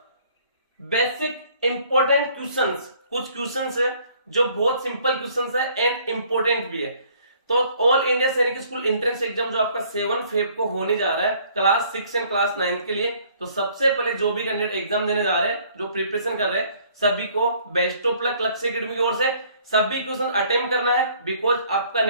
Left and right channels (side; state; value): both; inverted; correlation -0.59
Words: basic important questions. कुछ क्वेश्चंस है जो बहुत सिंपल क्वेश्चंस है एंड इंपॉर्टेंट भी है। तो ऑल इंडिया सैनिक स्कूल एंट्रेंस एग्जाम जो आपका 7 फेब को होने जा रहा है क्लास 6 एंड क्लास 9 के लिए, तो सबसे पहले जो भी कैंडिडेट एग्जाम देने जा रहे हैं, जो प्रिपरेशन कर रहे हैं, सभी को बेस्ट ऑफ लक लक्ष्य एकेडमी की ओर से। सभी क्वेश्चन अटेम्प्ट करना है बिकॉज आपका